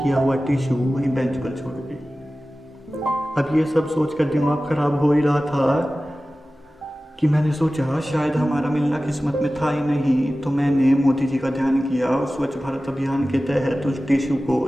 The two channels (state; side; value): normal; both; correlation 0.96